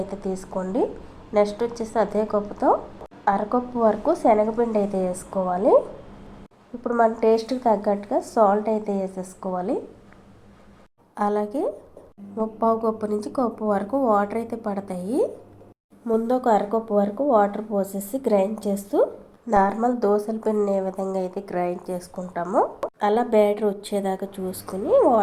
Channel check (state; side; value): identical; both; correlation 1.00